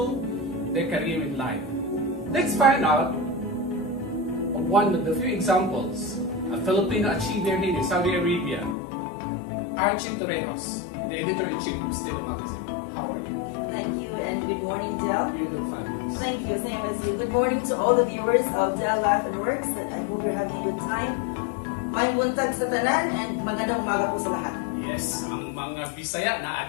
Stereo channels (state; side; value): drops out; right; at 8.8 s